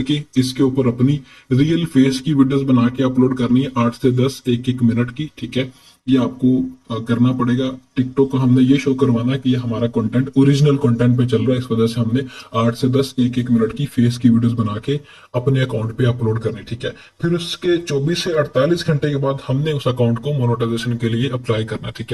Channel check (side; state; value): both; identical; correlation 1.00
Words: इसके ऊपर अपनी रियल फेस की वीडियोस बना के अपलोड करनी है, 8 से 10 एक मिनट की, ठीक है। ये आपको करना पड़ेगा। टिकटॉक को हमने ये शो करवाना है कि ये हमारा कंटेंट ओरिजिनल कंटेंट पे चल रहा है, इस वजह से हमने 8 से 10 एक मिनट की फेस की वीडियोस बना के अपने अकाउंट पे अपलोड करनी, ठीक है। फिर उसके 24 से 48 घंटे के बाद हमने उस अकाउंट को मोनेटाइजेशन के लिए अप्लाई करना, ठीक